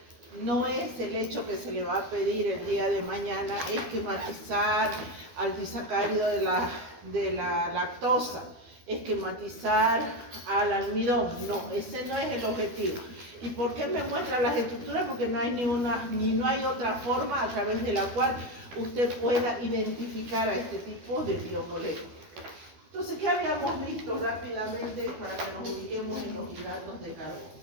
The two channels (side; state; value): left; late; 12 ms